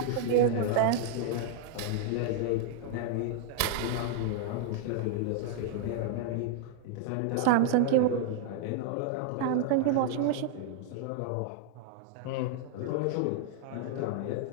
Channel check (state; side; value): different; both; correlation -0.01